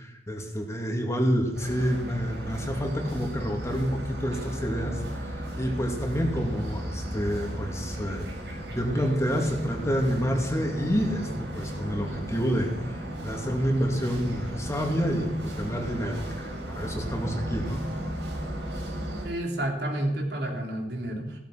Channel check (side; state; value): both; normal; correlation 0.84